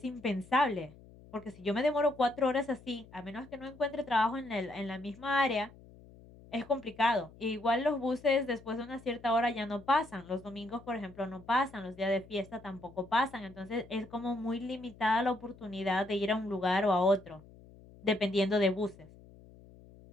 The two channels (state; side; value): noise; left; hum, 22 dB below the sound